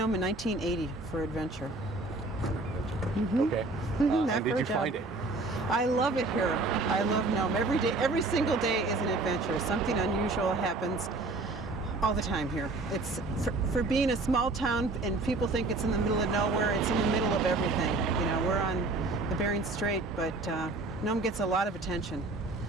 in 1980 for adventure. Okay. Not and for did a you job. find it? I love it here. I love Nome. Every day, every single day is an adventure. Something unusual happens all the time here. It's for being a small town, and people think it's in the middle of nowhere. It's in the middle of everything. You know, we're on the Bering Strait, but Nome gets a lot of attention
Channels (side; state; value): left; quieter; 3.2 dB